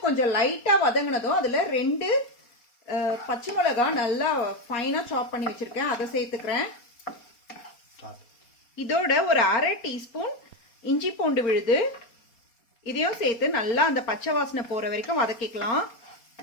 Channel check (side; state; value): right; late; 4.3 ms